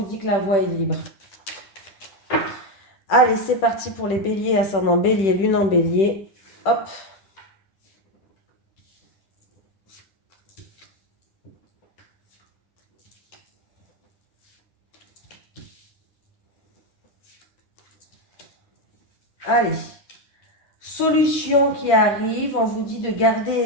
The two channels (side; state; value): right; late; 10 ms